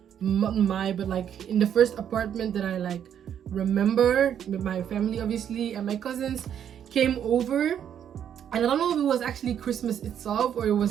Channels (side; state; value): left; quieter; 9.2 dB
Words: not my, but like in the first apartment that I like remember with my family obviously, and my cousins came over. And I don't know if it was actually Christmas itself or it